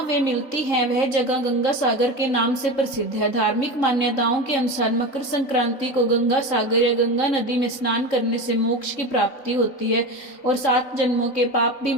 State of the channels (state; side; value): late; right; 3.9 ms